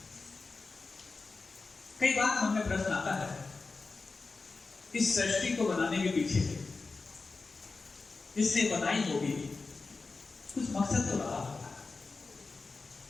कई बार मन में प्रश्न आता है, इस सृष्टि को बनाने के पीछे जिसने बनाई होगी कुछ मकसद तो रहा होगा,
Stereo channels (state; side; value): quieter; right; 4.0 dB